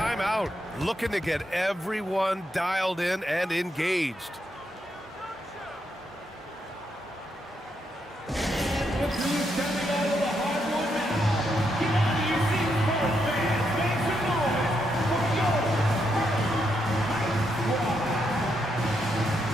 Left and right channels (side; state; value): both; normal; correlation 0.80